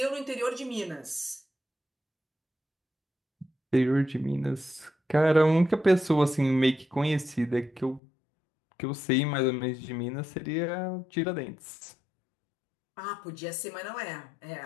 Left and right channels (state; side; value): drops out; right; at 8.0 s